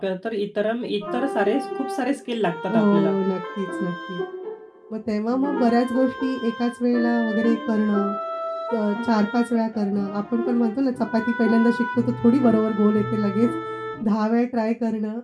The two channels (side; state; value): both; identical; correlation 1.00